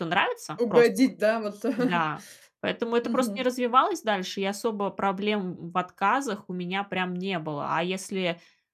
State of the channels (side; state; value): both; identical; correlation 1.00